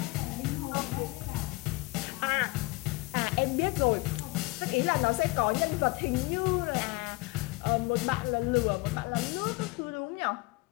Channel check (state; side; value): quieter; right; 24.5 dB